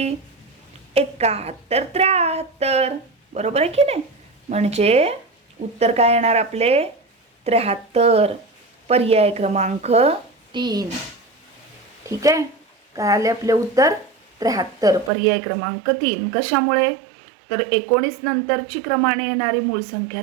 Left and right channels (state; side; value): drops out; left; at 15.1 s